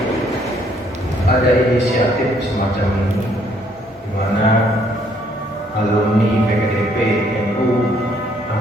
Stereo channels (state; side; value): normal; both; correlation 0.66